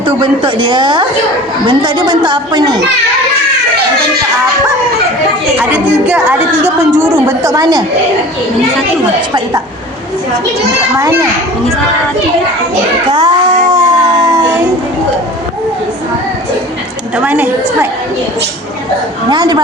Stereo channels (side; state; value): both; normal; correlation 0.41